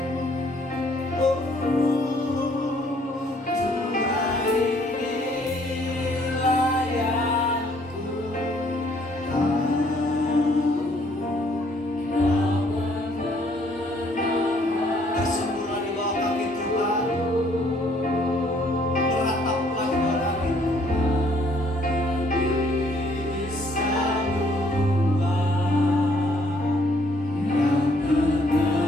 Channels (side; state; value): both; normal; correlation 0.64